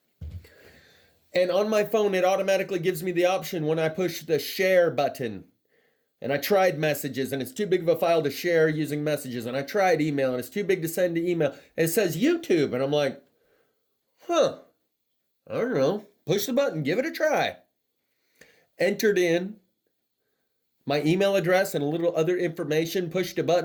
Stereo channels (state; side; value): identical; both; correlation 1.00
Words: And on my phone, it automatically gives me the option when I push the share button. And I tried messages, and it's too big of a file to share using messages. And I tried email, and it's too big to send to email. And it says YouTube, and I'm like, I don't know. Push the button, give it a try. Entered in my email address and a little other information, pushed a